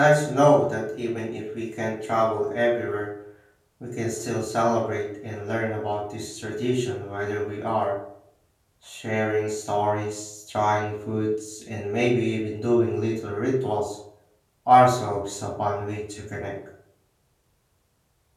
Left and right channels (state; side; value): identical; both; correlation 1.00